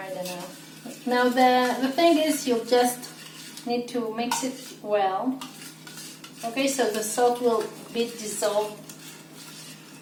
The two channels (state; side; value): identical; both; correlation 1.00